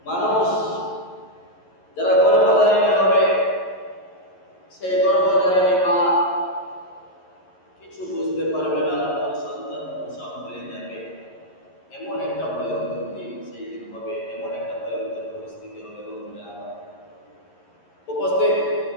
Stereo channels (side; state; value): right; late; 11 ms